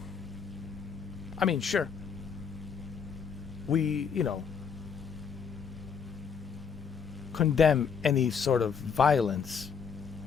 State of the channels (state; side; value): quieter; right; 6.6 dB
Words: I mean, sure. We, condemn any sort of violence